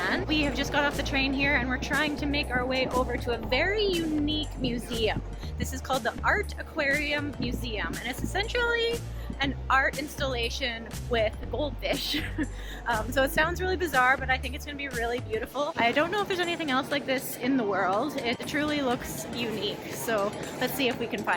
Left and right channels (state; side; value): identical; both; correlation 1.00